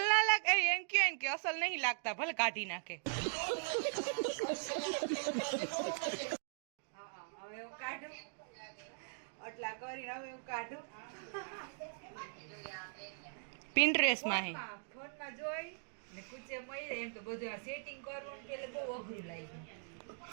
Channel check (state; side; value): silent; left; digital silence